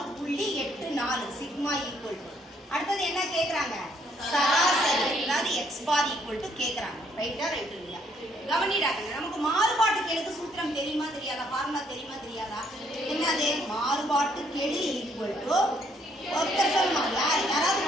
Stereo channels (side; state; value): both; normal; correlation 0.68